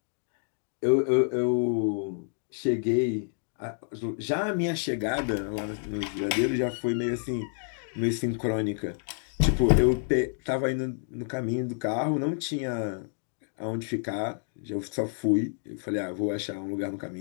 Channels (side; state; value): right; silent; 59 dB below the other